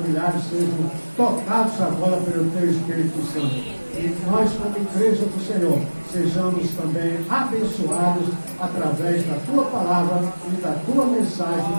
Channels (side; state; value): both; inverted; correlation -1.00